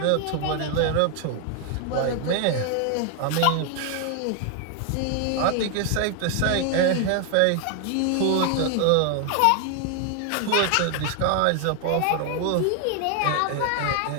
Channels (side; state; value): both; different; correlation 0.00